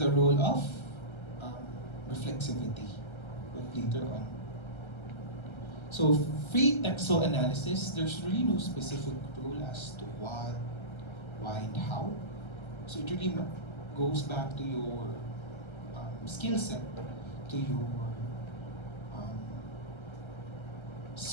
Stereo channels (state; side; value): late; right; 1.3 ms